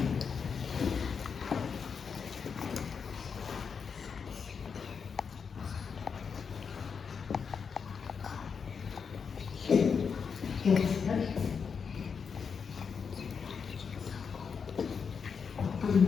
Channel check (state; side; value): quieter; right; 6.1 dB